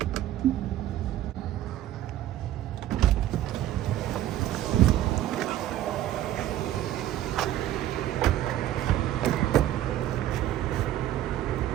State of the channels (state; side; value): quieter; left; 12.8 dB